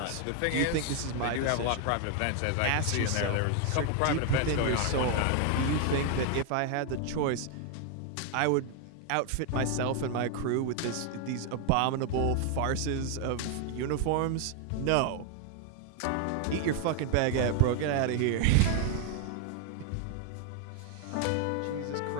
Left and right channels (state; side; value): different; both; correlation 0.00